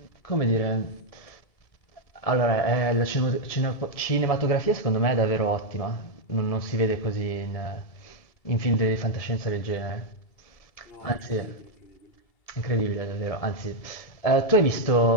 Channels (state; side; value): late; right; 1.7 ms